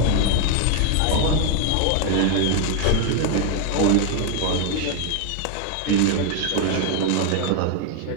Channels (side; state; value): both; different; correlation 0.01